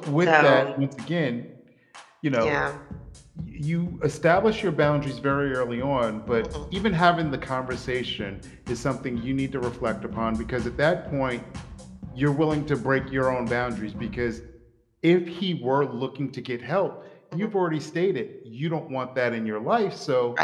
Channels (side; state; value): both; identical; correlation 1.00